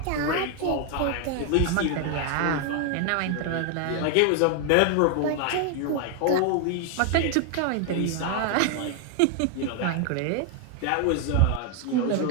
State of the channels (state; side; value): different; both; correlation 0.00